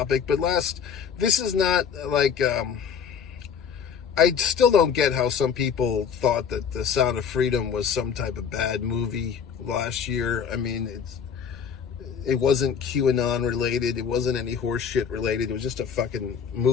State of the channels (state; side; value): quieter; right; 7.1 dB